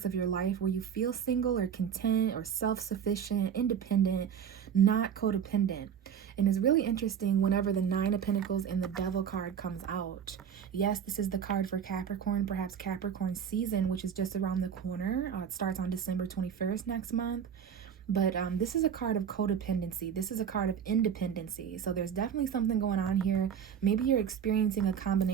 of your life where you feel single or content or self-sufficient, independent, not codependent. And it's really interesting whenever the 9 of Pentacles and the Devil card comes out. Yes, this is the card for Capricorn, perhaps Capricorn season, which is just around the corner. It starts on December 21st next month. But this is a card of codependency. This is a card of independency. So there's definitely something going on here. Maybe you're experiencing a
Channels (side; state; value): left; quieter; 8.1 dB